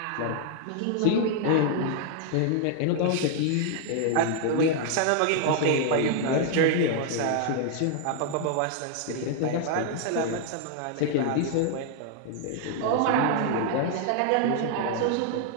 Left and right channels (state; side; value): different; both; correlation 0.00